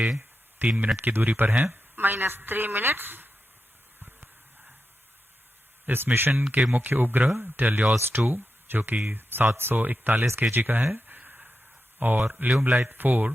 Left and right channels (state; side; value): normal; both; correlation 0.89